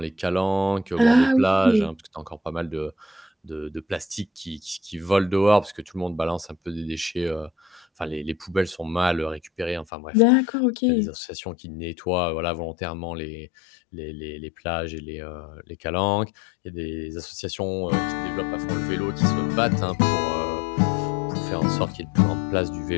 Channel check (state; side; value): drops out; right; at 9.9 s